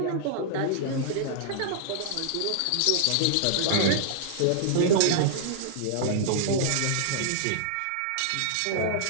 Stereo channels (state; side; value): different; both; correlation -0.01